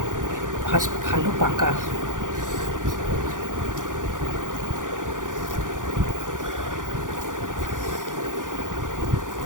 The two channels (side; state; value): left; late; 0.88 ms